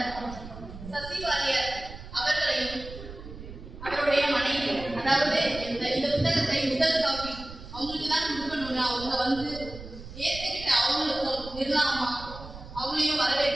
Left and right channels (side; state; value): right; noise; rumble, 13 dB below the sound